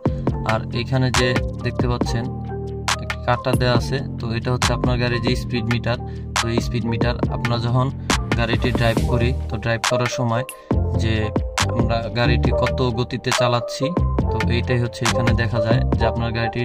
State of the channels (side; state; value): both; identical; correlation 1.00